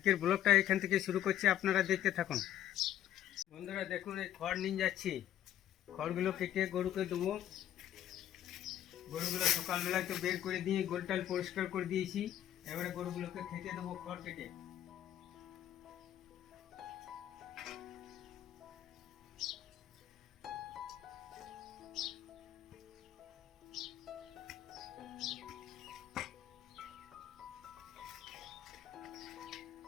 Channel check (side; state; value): right; quieter; 11.7 dB